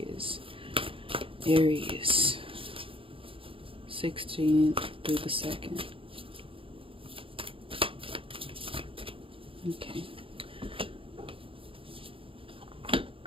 16th through the 2nd. Okay.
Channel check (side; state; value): left; late; 0.26 ms